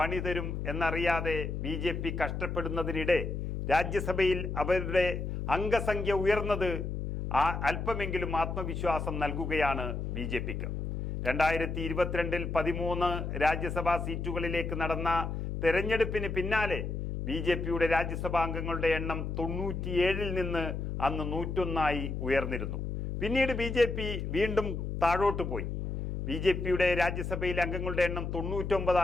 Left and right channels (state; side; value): noise; left; hum, 4 dB below the sound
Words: തരും എന്നറിയാതെ BJP കഷ്ടപ്പെടുന്നതിനിടെ രാജ്യസഭയിൽ അവരുടെ അംഗസംഖ്യ ഉയർന്നത് അല്പമെങ്കിലും ആത്മവിശ്വാസം നൽകുകയാണ് BJPക്ക്. 2022 13 രാജ്യസഭാ സീറ്റുകളിലേക്ക് നടന്ന തെരഞ്ഞെടുപ്പിന് പിന്നാലെ BJPയുടെ രാജ്യസഭാ അംഗങ്ങളുടെ എണ്ണം 97 നിന്ന് അന്ന് 101 ഉയർന്നിരുന്നു. പിന്നീട് BJP വീണ്ടും താഴോട്ട് പോയി. BJPയുടെ രാജ്യസഭയിലെ അംഗങ്ങളുടെ എണ്ണം